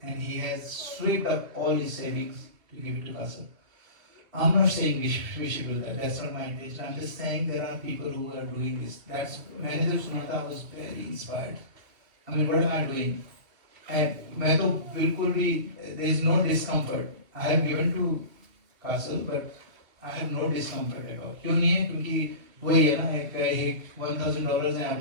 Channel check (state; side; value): late; left; 2.8 ms